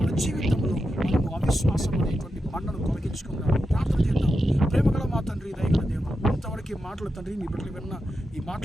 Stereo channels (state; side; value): normal; both; correlation 0.88